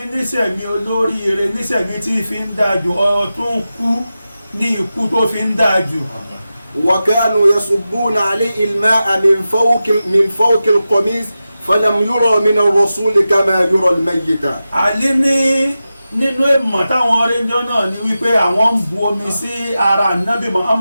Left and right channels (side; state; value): both; inverted; correlation -0.93